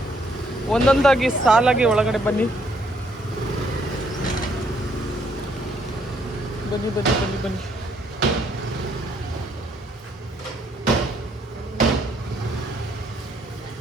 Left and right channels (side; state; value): both; normal; correlation 0.69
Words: ಒಂದೊಂದಾಗಿ ಸಾಲಾಗಿ ಒಳಗಡೆ ಬನ್ನಿ ಬನ್ನಿ ಬನ್ನಿ ಬನ್ನಿ ಬನ್ನಿ.